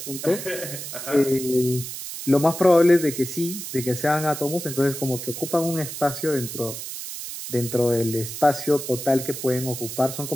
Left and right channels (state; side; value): noise; right; hiss, 8 dB below the sound